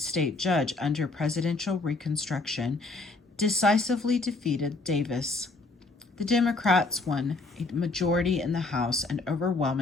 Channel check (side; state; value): right; quieter; 3.4 dB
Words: judge under presidential Reconstruction, decisively defeated Davis. The Democrats won a majority in the House and